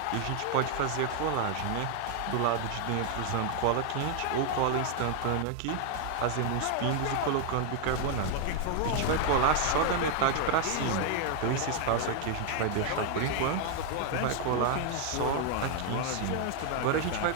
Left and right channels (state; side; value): different; both; correlation 0.00